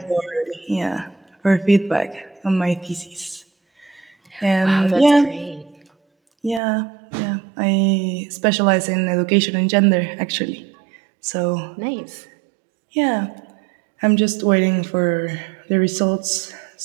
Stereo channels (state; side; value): drops out; left; at 6.6 s